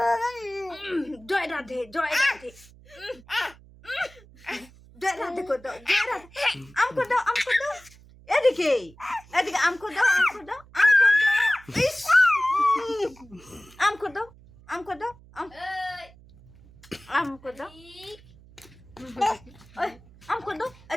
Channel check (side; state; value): right; noise; hum, 24 dB below the sound